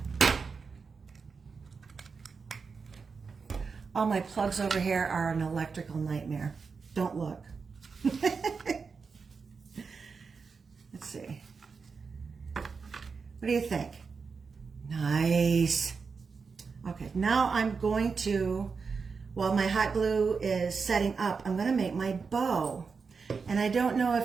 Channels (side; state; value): left; quieter; 5.1 dB